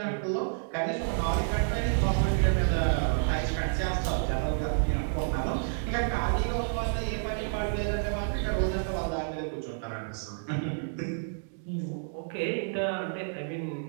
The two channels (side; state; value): left; silent; digital silence